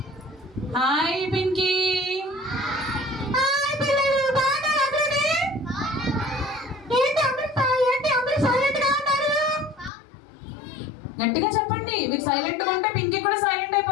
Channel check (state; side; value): drops out; right; at 9.9 s